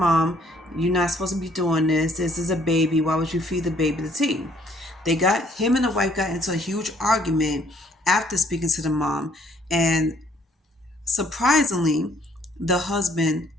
"You're not supposed to be doing this. This is a baby. Why would you feed the baby the tea?" They got him and the wife got into a huge argument after speaking to the mom, and surprisingly, the husband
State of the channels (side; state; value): both; normal; correlation 0.63